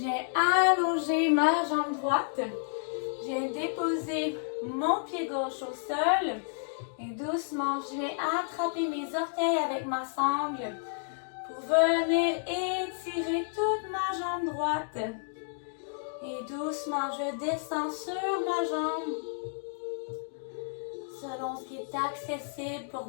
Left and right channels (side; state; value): right; silent; digital silence